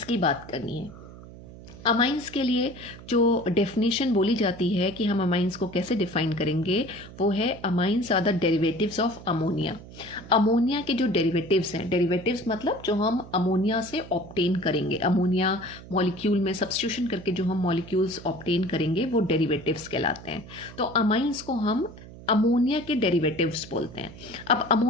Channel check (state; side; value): noise; right; hum, 17 dB below the sound